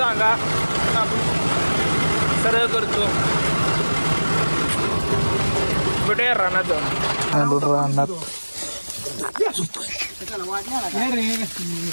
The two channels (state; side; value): inverted; both; correlation -1.00